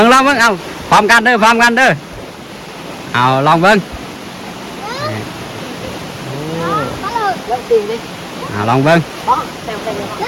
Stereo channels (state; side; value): identical; both; correlation 1.00